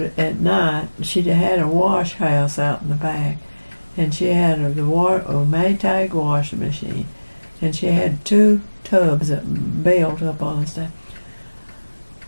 night she had a wash house out in the back, and she had a Maytag washing machine, and she had 2 tubs that built up on the stuff.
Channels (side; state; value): both; inverted; correlation -1.00